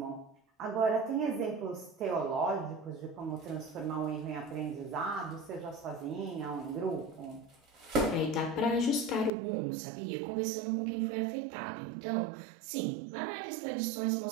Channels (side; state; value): left; drops out; at 9.3 s